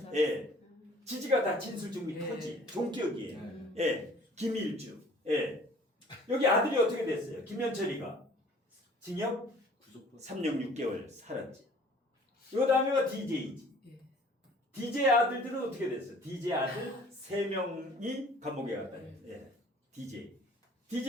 예. 지지가 다 진술증이 터지. 종격이에요. 예. 김일주. 예. 여기 아들이 어떻게 됐어요? 김현철이가 징역 3년 6개월 살았지. 요 다음에가 DJ지. DJ 아들들은 어떻게 됐어요? DJ 아들 3명이 감옥에 갔다. 예.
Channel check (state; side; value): normal; both; correlation 0.52